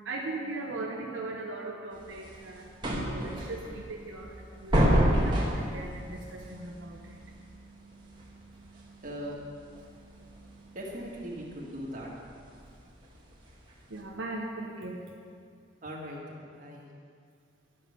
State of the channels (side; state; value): both; normal; correlation 0.68